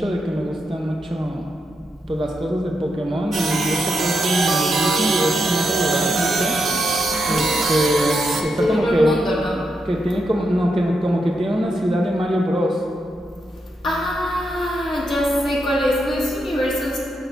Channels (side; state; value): both; normal; correlation 0.83